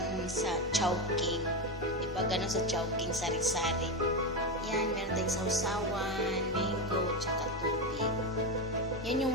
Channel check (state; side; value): normal; both; correlation 0.13